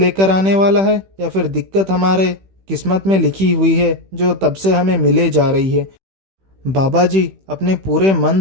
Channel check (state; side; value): late; left; 16 ms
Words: आने वाला है या फिर दिक्कत हमारे किस्मत में लिखी हुई है जो तब से हमें मिले जा रही है। बाबा जी अपने पूरे मन